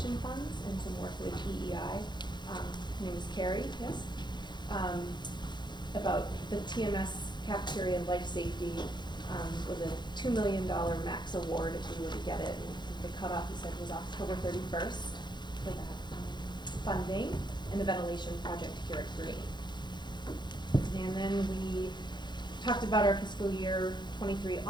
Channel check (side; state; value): right; late; 0.21 ms